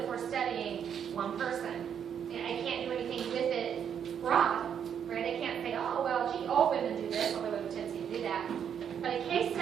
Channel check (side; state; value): left; quieter; 8.3 dB